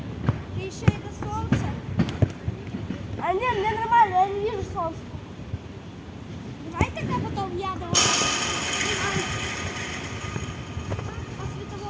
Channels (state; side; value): identical; both; correlation 1.00